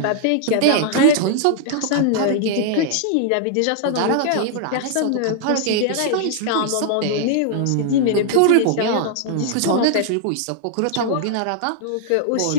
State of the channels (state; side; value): different; both; correlation -0.01